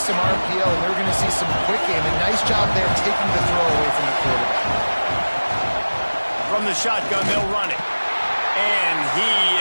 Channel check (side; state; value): both; inverted; correlation -1.00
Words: some RPO, and they were going to see some quick game. And nice job there taking the throw away from the quarterback. From the shotgun, they'll run it. And he